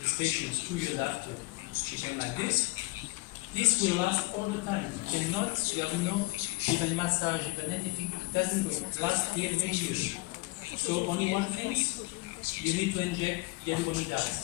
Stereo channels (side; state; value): right; quieter; 24.2 dB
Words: patients 2 years after, treatment like this will last all the time. You cannot, you have no even massage, even anything, it doesn't last here many years. So only one thing, you need to inject